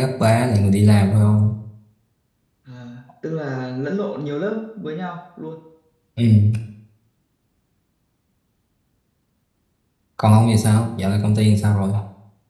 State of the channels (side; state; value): both; identical; correlation 1.00